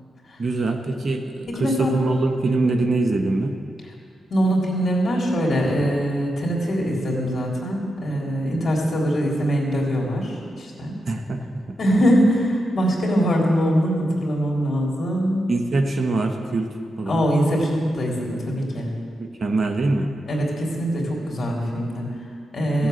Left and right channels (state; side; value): normal; both; correlation 0.86